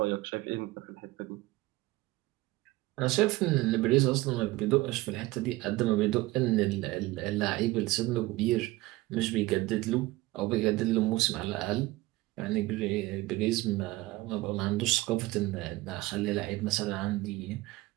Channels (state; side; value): quieter; left; 19.3 dB